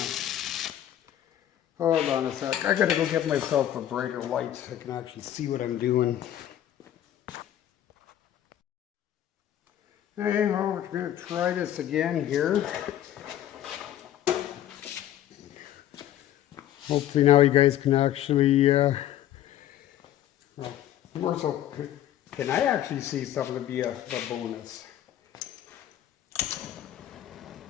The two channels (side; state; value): right; quieter; 11.8 dB